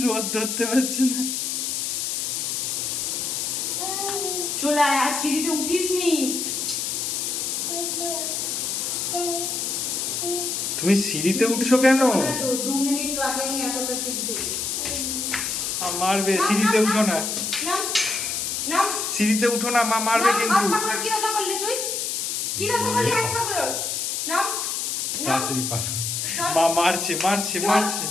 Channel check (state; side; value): noise; left; hiss, 1 dB below the sound